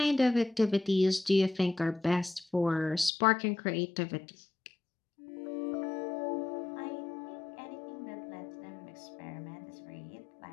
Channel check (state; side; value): drops out; right; at 3.1 s